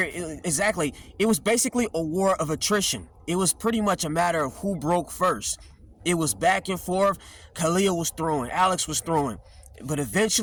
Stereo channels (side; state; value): both; identical; correlation 1.00